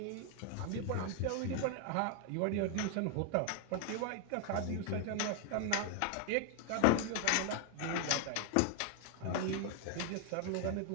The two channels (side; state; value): both; different; correlation 0.01